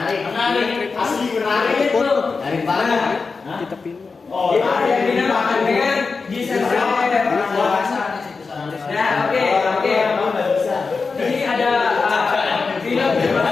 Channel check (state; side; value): quieter; right; 4.6 dB